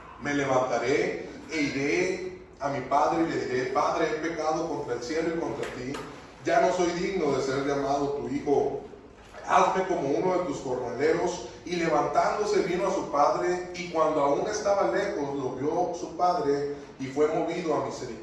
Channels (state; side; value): identical; both; correlation 1.00